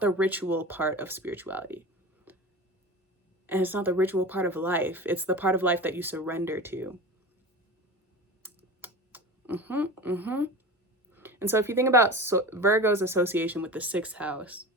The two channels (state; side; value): normal; both; correlation 0.32